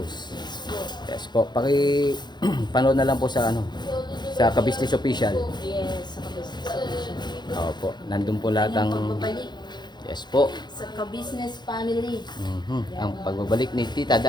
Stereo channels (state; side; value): late; right; 0.21 ms